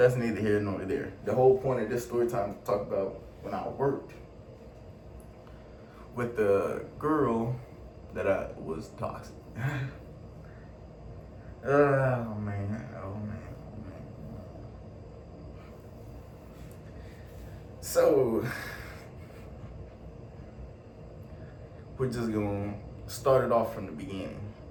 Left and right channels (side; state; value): both; identical; correlation 1.00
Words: neither here nor there. The whole point of this story time is to talk about when I worked with the girl that I was toxic. Oh man. So we're just gonna start it off from the beginning.